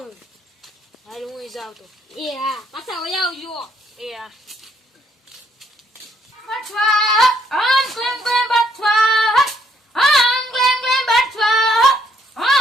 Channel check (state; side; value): normal; both; correlation 0.69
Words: હું જાઉં તો એ હા પાછા વયા આવજો એ હા બચવા આમ ક્લેમ ક્લેમ બચવા આમ ક્લેમ ક્લેમ બચવા